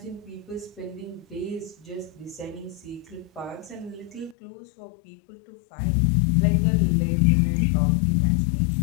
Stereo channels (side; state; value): right; drops out; at 4.4 s